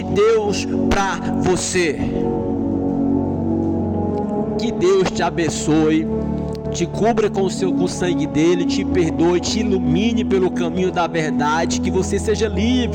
Deus para você. Que Deus te abençoe, te cubra com o sangue dele, te perdoe, te ilumine pelo caminho da verdade, que você seja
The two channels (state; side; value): identical; both; correlation 1.00